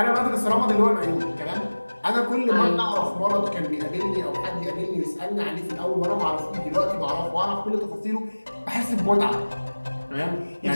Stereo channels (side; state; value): both; inverted; correlation -1.00